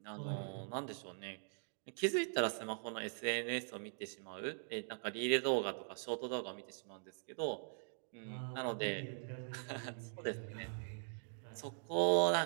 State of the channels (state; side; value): silent; left; digital silence